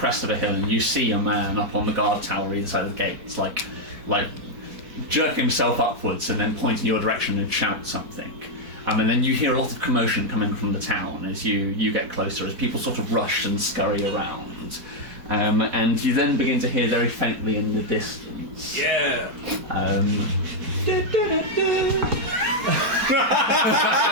of a hill and you see a man up on the guard tower either side of the gate. It's like jerking himself upwards and then pointing your direction and shout something. And then you hear a lot of commotion coming from the town as you get closer, as people sort of rush and scurry around. And you then begin to hear very faintly in the distance. Yeah.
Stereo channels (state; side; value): late; left; 4.1 ms